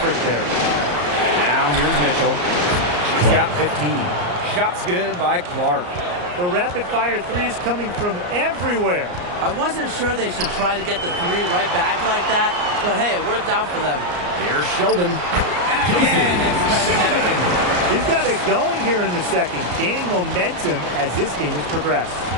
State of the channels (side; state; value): left; late; 34 ms